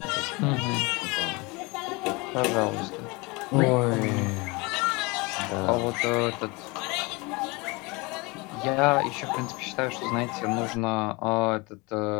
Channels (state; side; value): quieter; right; 26.2 dB